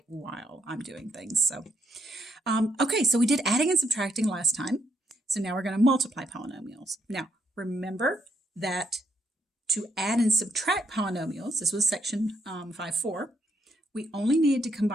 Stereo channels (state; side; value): normal; both; correlation 0.76